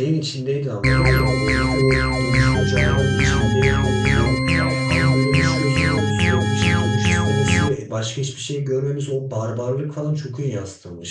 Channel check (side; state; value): both; identical; correlation 1.00